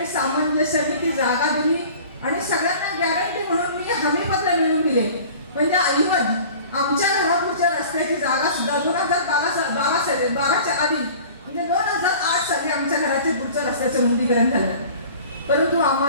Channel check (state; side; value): inverted; both; correlation -0.43